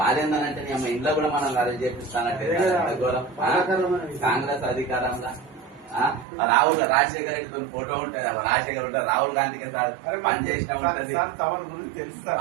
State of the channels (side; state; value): left; drops out; at 6.2 s